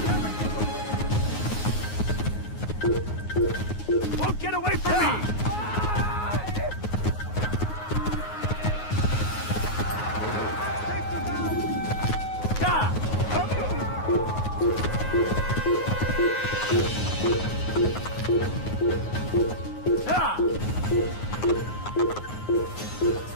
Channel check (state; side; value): late; right; 9.5 ms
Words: Won't get away from me!